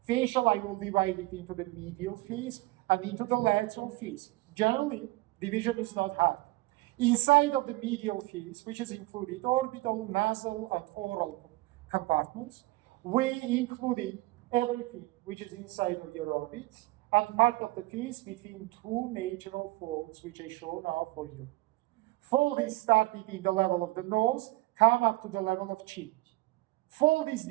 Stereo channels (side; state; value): left; quieter; 20.8 dB